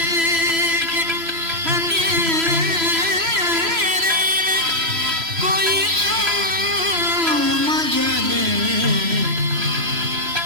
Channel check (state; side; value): late; left; 3.0 ms